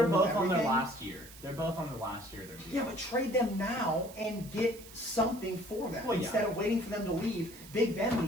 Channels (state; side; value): noise; right; hiss, 18 dB below the sound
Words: whole new both on their everything. last year. They're both on their last year. Yeah, but trade them now and get something for them Well, yeah. instead of waiting for them to leave. Big Ben